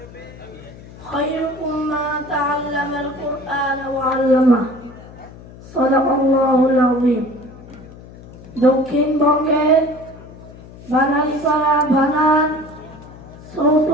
خيركم من تعلم القرآن وعلمه صدق الله العظيم দক্ষিণবঙ্গের বানারীপাড়া ভানান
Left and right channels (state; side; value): noise; left; hum, 18 dB below the sound